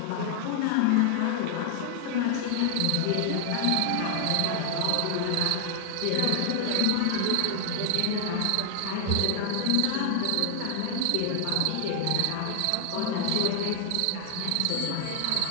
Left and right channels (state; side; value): different; both; correlation 0.00